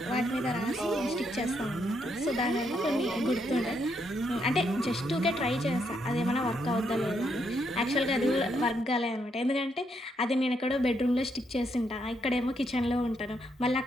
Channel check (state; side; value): normal; both; correlation 0.77